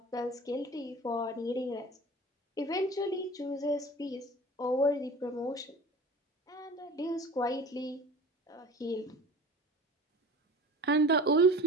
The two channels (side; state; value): both; normal; correlation 0.39